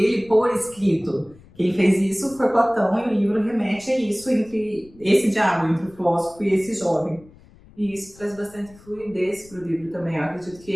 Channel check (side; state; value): left; noise; rumble, 24 dB below the sound